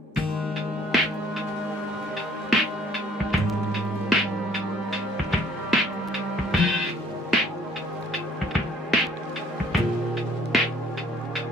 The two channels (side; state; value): both; normal; correlation 0.59